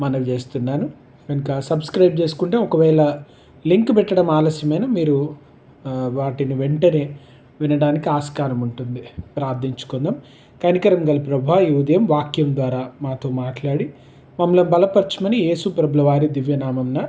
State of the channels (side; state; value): both; identical; correlation 1.00